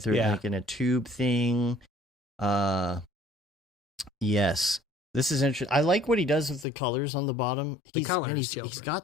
it, like in a tube thing. Yes. This is interesting. I like what he does with the colors on the bottom. He's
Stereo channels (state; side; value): drops out; right; at 6.7 s